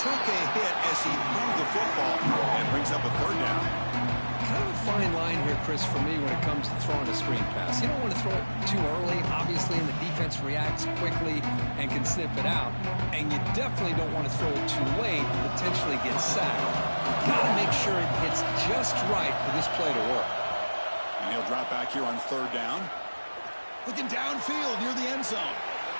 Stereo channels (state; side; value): inverted; both; correlation -1.00